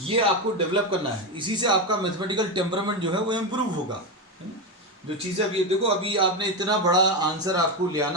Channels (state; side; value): normal; both; correlation 0.12